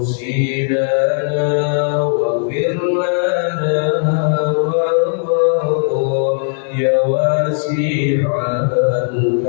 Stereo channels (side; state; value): right; silent; digital silence